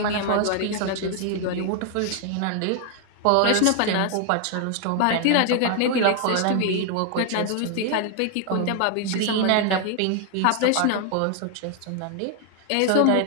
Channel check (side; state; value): both; different; correlation 0.00